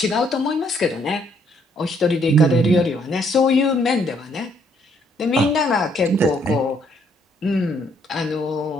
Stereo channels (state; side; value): normal; both; correlation 0.68